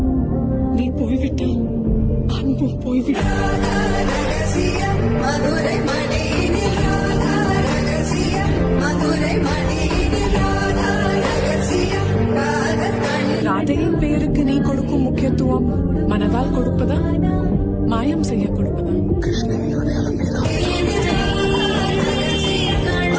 நீ போய்விட்டால் அன்பும் போய்விட்டால். ராதையின் பெயருக்கு நீ கொடுக்கும் முக்கியத்துவம் மனதால் கொடுப்பதா, மாயம் செய்ய கொடுப்பதா? கிருஷ்ணனின் அடையாளம் நீதான்.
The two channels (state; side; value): identical; both; correlation 1.00